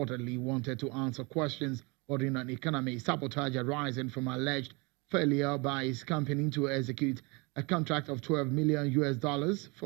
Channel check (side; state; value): left; quieter; 28.6 dB